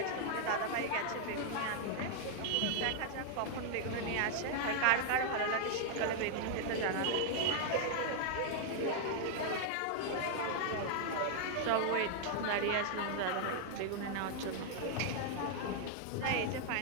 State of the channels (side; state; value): both; different; correlation 0.00